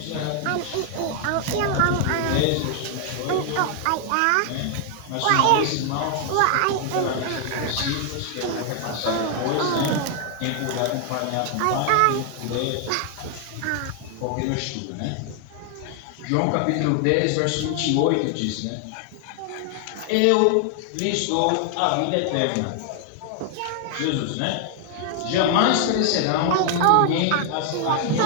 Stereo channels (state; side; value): different; both; correlation 0.00